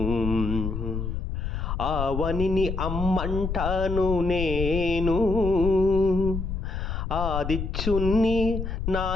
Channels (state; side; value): noise; left; rumble, 4 dB below the sound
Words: ఆవనిని అమ్మంటాను నేను, ఆదిత్యుణ్ణి